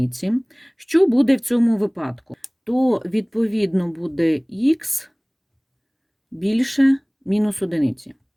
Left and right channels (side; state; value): both; identical; correlation 1.00